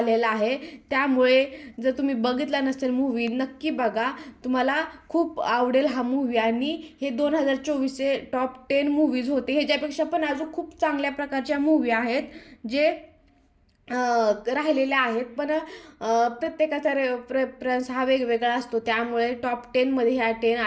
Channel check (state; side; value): identical; both; correlation 1.00